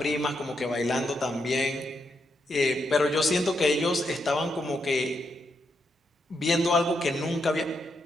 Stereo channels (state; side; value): normal; both; correlation 0.81